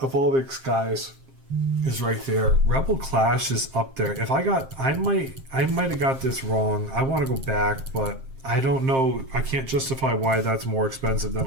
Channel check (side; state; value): left; late; 7.5 ms